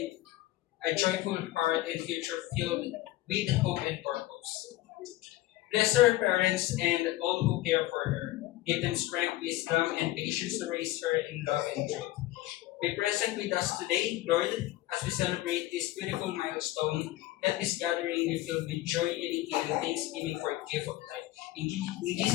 a joyful heart and future filled with hope and purpose. Bless her parents and all who care for her. Give them strength, wisdom, and patience to raise her in love and truth. Be present with us today, Lord, as we celebrate this beautiful milestone. Let this gathering be filled with joy, unity, and thanksgiving for a gift of life. In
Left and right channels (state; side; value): quieter; right; 16.5 dB